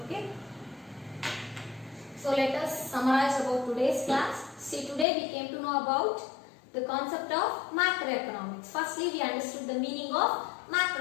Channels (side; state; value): right; drops out; at 5.1 s